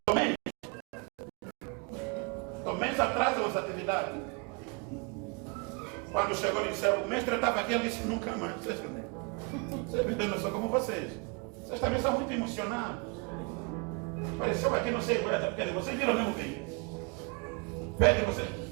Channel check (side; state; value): left; quieter; 32.3 dB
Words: Quando chegou e disseram, o mestre estava aqui, ele disse, nunca mais. Vocês não são como vocês. Vocês também são muito emocionados. Apareceu aqui, não sei, Pedro, vocês viram o mesmo vídeo? Pedro, você.